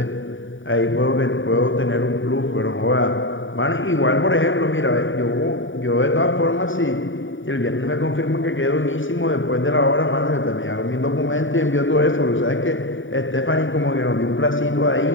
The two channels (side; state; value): right; late; 0.57 ms